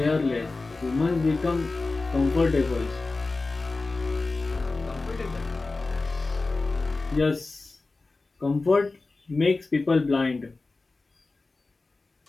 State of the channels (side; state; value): right; quieter; 3.5 dB